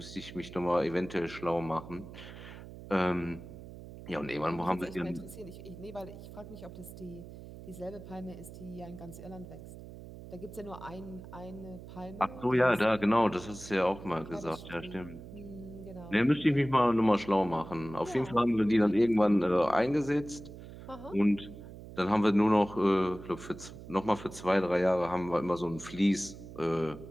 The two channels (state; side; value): noise; right; hum, 14 dB below the sound